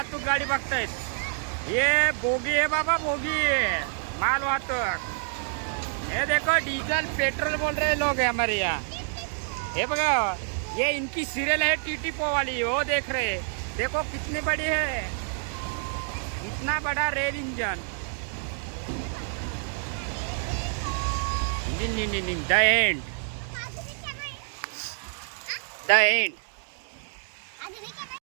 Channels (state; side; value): silent; left; 60 dB below the other